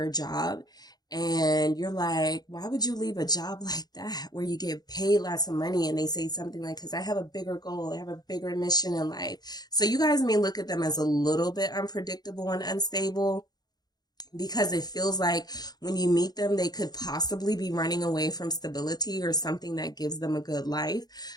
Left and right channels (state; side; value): late; right; 0.19 ms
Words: job, and you're like, why would you leave a job like that where you get paid lots of money? And they say something like, because I have a bigger goal, I have a bigger mission in life. So you guys may look at them as a little bit unpredictable and unstable, because it feels like when you meet them, they could possibly be running away from stability or something that gives them a good life.